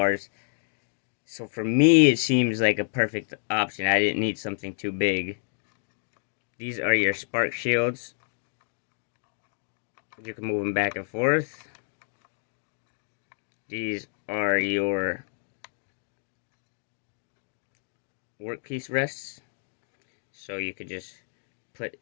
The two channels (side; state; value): right; silent; digital silence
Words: So for me, it seems like a perfect option. I didn't need something too big. These are your spark shields. You can move them back and forth. These are your workpiece rests. So you could just put